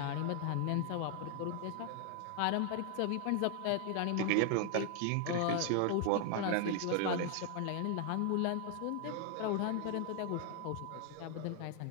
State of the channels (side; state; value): both; different; correlation 0.00